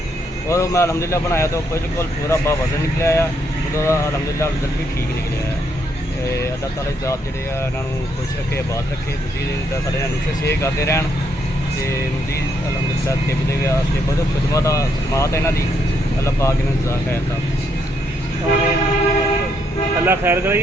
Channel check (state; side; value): normal; both; correlation 0.75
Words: और मैं अलहमदुलिल्लाह बनाया तो बिल्कुल पूरा वजन निकलिया आ। अलहमदुलिल्लाह रिजल्ट भी ठीक निकलिया है। अल्लाह ताला की ज़ात जिहड़े आ इन्हां नूं खुश रखे, आबाद रखे, मज़ीद सारे नुस्खे शेयर करते रहन ते मज़ीद अलहमदुलिल्लाह तिब दे वास्ते बहुत खिदमत इन्हां दी। अल्लाह पाक इन्हां दी ज़ात खैर दा अल्लाह खैर करे।